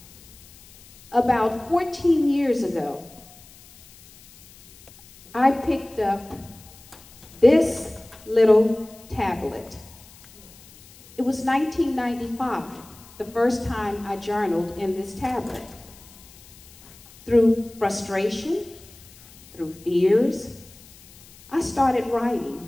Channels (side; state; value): left; noise; hiss, 23 dB below the sound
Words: About 14 years ago, I picked up this little tablet. It was 1995, the first time I journaled in this tablet. Through frustration, through fears, I started